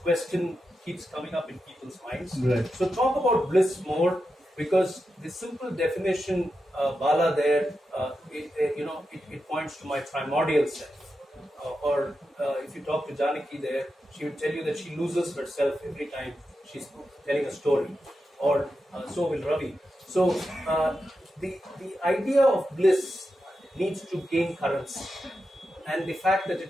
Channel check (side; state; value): both; normal; correlation 0.89